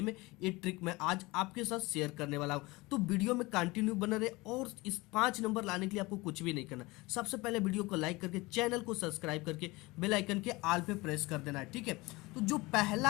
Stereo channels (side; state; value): right; quieter; 22.5 dB